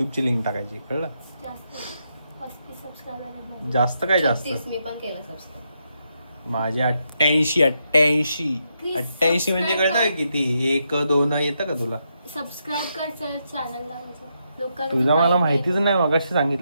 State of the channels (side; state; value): both; inverted; correlation -0.81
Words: लिंक टाकायची, कळलं? जास्त 35 सबस्क्रायबर जास्त काय जास्त, 36 मी पण केलं सबस्क्राईब. माझे 88 म्हणजे कळतं किती, 1 2 येतं का तुला? सबस्क्राईब कर चल चॅनलला माझ्या. लोकांना तुझा मला माहिती माहितीच नाही, मगाशी